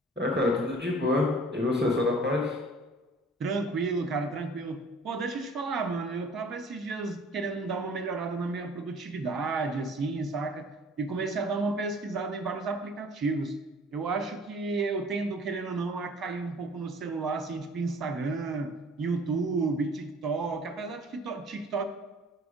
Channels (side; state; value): both; normal; correlation 0.50